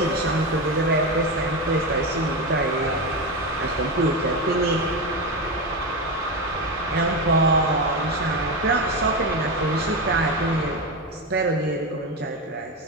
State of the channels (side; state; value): both; normal; correlation 0.15